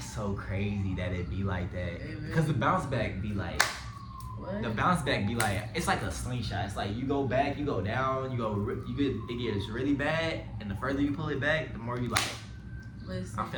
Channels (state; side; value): identical; both; correlation 1.00